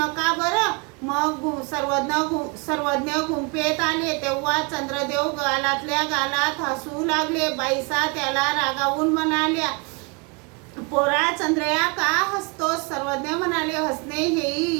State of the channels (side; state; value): left; quieter; 30.9 dB